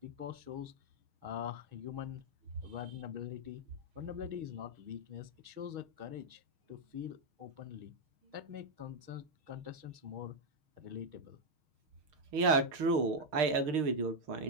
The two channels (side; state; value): left; late; 6.7 ms